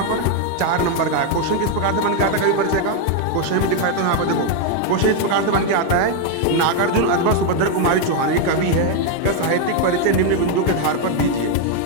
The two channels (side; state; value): both; different; correlation 0.01